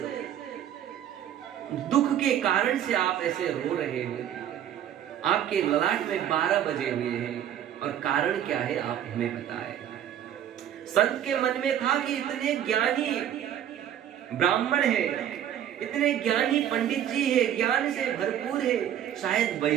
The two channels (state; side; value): quieter; left; 10.4 dB